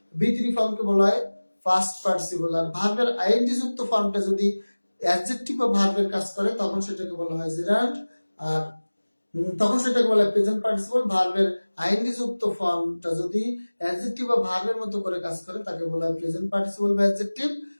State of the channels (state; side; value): inverted; both; correlation -1.00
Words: V3 ফর্মকে বলা হয় পাস্ট পার্টিসিপল। আর ভার্বের আইএনজি যুক্ত ফর্মটা যদি অ্যাডজেক্টিভ বা ভার্বের কাজ করে তখন সেটাকে বলা হয় জেরান্ড, আর তখন সেটাকে বলা হয় প্রেজেন্ট পার্টিসিপল। ভার্বের আইএনজি যুক্ত ফর্মটা যদি অ্যাডজেক্টিভ বা ভার্বের মতো করে কাজ করে তাকে বলা হয় প্রেজেন্ট পার্টিসিপল বা অ্যাডজেক্টিভ,